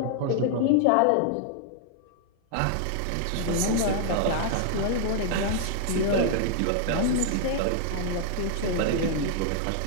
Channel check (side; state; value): both; different; correlation -0.01